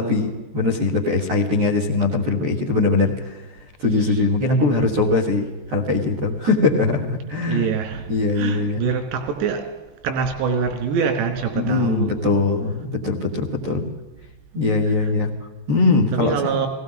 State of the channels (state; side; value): late; left; 14 ms